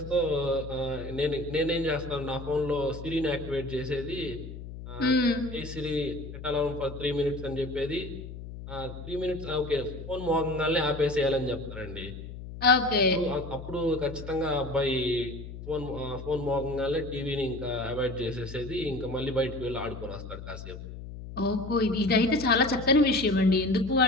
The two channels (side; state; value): left; noise; hum, 11 dB below the sound